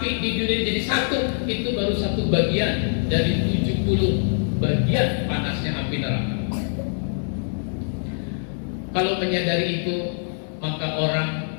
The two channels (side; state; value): right; silent; digital silence